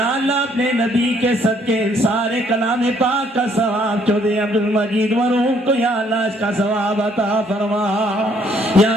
اللہ اپنے نبی کے صدقے سارے کلام پاک کا ثواب چودھری عبدالمجید مرحوم کو یا اللہ اس کا ثواب عطا فرما یا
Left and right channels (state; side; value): normal; both; correlation 0.66